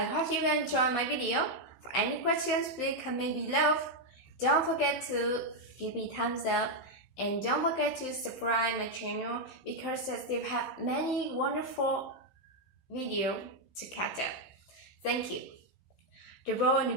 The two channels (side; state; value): right; late; 15 ms